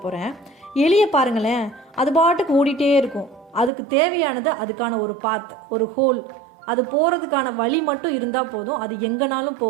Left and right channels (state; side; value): drops out; left; at 3.7 s